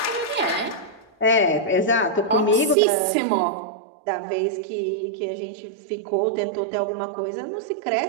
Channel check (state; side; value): drops out; left; at 2.8 s